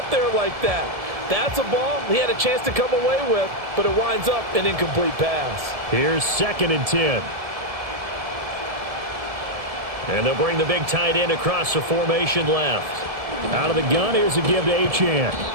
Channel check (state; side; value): late; left; 1.7 ms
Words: there like that. That's a ball he had a chance to come away with, but it winds up an incomplete pass. Here's 2nd and 10. And they'll bring the big tight end across the formation left. Out of the gun, here's a give to Achane.